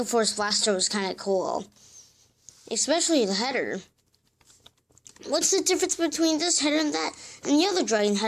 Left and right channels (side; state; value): both; identical; correlation 1.00